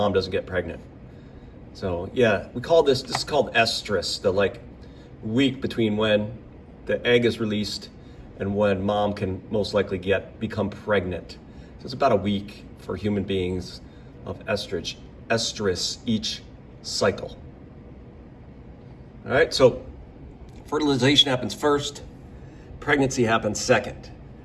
doesn't get pregnant. So yeah, this is called estrus, the week between when the egg is released and when mom can most likely become pregnant. So it's about a week for human beings of estrus each cycle. All right, so fertilization happens first, pregnancy happens second,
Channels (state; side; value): identical; both; correlation 1.00